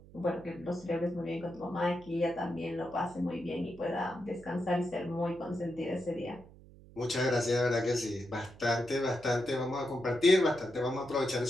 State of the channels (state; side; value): noise; right; hum, 21 dB below the sound